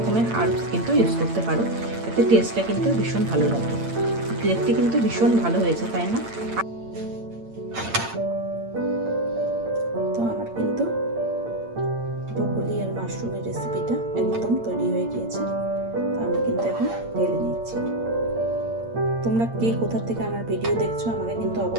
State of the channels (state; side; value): late; left; 8.8 ms